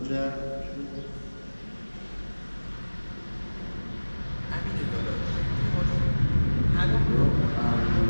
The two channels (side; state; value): both; inverted; correlation -1.00